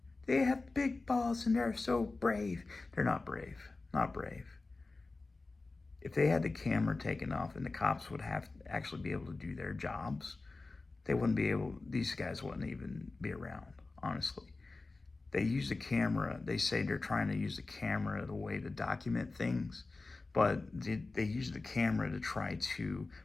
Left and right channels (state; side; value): quieter; right; 3.5 dB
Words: They have big balls and they're so brave." They're not brave. Not brave. If they had the camera taken off and the cops would have to actually be able to do their jobs, these guys wouldn't even be around, honestly. They use the camera. They say they're trying to use the camera the way to document things, but they use the camera to try to